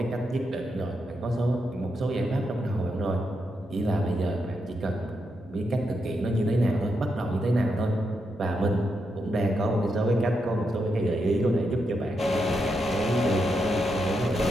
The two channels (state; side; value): normal; both; correlation 0.83